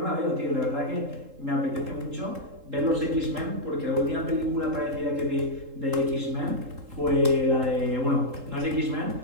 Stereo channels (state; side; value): late; left; 3.7 ms